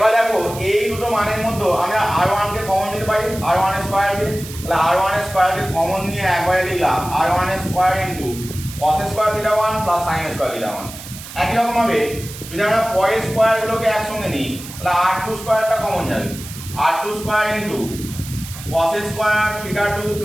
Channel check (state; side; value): noise; right; hiss, 13 dB below the sound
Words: দেখো এই দুটো মানের মধ্যে আমরা r1 কে কমন নিতে পারি, r1 এর স্কয়ার কে, তাহলে r1 এর স্কয়ার কে কমন নিয়ে একবারে লিখলাম r1 এর স্কয়ার ইনটু cos এর স্কয়ার থিটা 1 প্লাস sin এর স্কয়ার থিটা 1। একই রকম ভাবে যদি আমরা পরের স্কয়ারগুলোকে একসঙ্গে নিই তাহলে r2 স্কয়ারটা কমন যাবে, r2 স্কয়ার ইনটু cos এর স্কয়ার থিটা 2